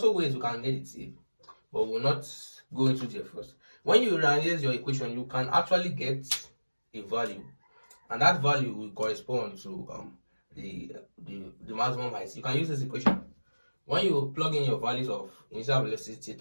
ways you can get the t, but we'll not go into there first. When you rearrange your equation, you can actually get a value, and that value will correspond to the maximum height. You can use this equation. When you plug in your values of initial velocity,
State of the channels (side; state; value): both; inverted; correlation -1.00